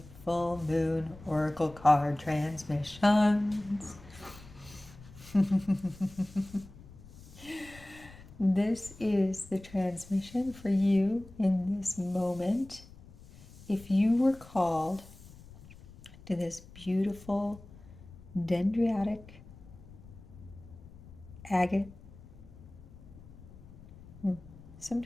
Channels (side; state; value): left; noise; rumble, 19 dB below the sound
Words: full moon oracle card transmissions. This is the transmission for you in this moment. If you were called to this beautiful Dendritic Agate,